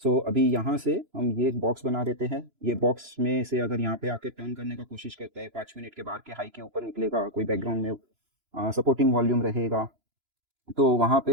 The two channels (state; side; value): late; left; 2.9 ms